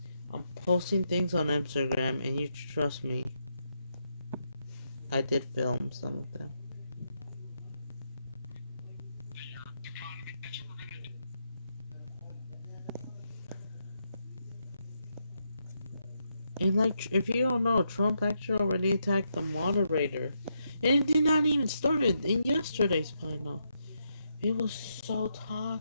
I'm posting things on Instagram and you trust me. I did film some of them. And like, if you don't know, Trump actually already attacked the moderator. And it did not even start in yesterday's final. It was so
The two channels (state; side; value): inverted; both; correlation -0.81